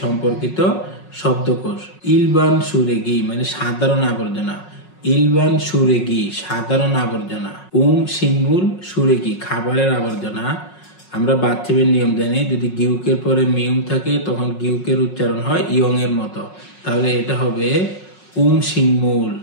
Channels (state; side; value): late; right; 5.5 ms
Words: সম্পর্কিত শব্দকোষ। ইলবান সুরেগি মানে সাধারণ আবর্জনা। ইলবান সুরেগি সাধারণ আবর্জনা। সিঙ্গুল সুরেগি খাবারের আবর্জনা। আমরা বাচ্চাদের নিয়ম জানি, যদি গিউকের পরে মিউম থাকে তখন গিউকের উচ্চারণ হয় ইয়ং এর মতো, তাহলে এটা হবে সিঙ্গুল